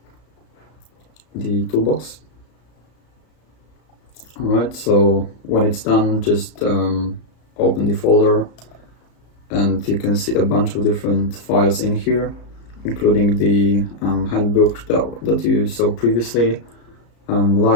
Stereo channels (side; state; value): right; late; 34 ms